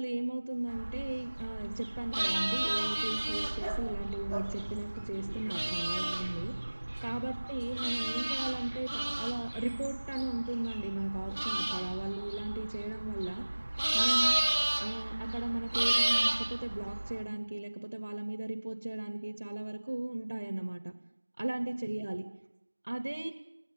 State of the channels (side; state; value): both; inverted; correlation -1.00